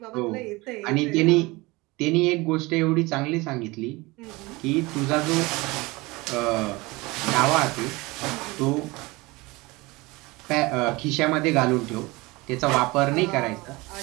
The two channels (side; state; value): left; quieter; 22.9 dB